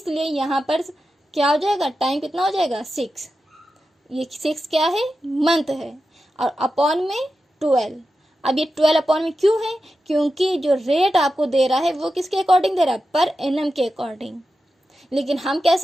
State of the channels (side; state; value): both; normal; correlation 0.91